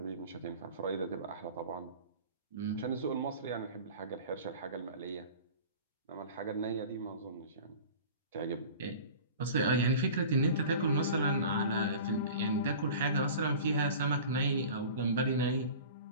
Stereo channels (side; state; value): both; inverted; correlation -0.39